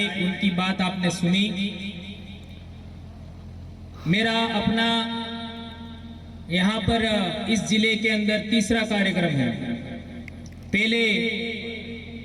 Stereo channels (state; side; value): identical; both; correlation 1.00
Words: उनकी बात आपने सुनी। मेरा अपना यहाँ पर इस जिले के अंदर तीसरा कार्यक्रम है। पहले